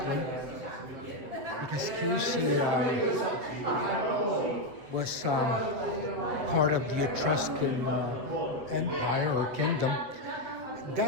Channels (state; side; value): late; left; 7.9 ms